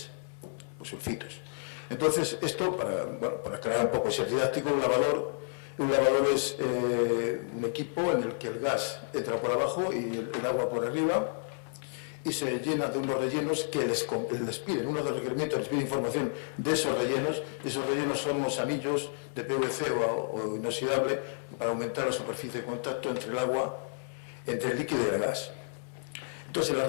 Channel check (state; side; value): silent; right; 57 dB below the other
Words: pues sulfitos. Entonces, esto, para aclarar un poco, es didáctico. Un lavador es un equipo en el que el gas entra por abajo y el agua por arriba, y se llena de unos rellenos que les piden, uno de los requerimientos les pide información de esos rellenos. Esos rellenos son unos anillos de PVC o inoxidable para aumentar la superficie de contacto entre el agua, entre el líquido y el gas. Entonces, en las